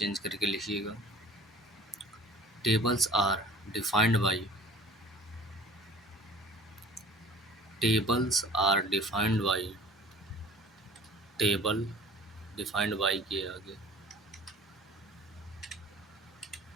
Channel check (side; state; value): both; normal; correlation 0.46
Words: करके लिखिएगा। Tables are defined by tables are defined by table defined by के आगे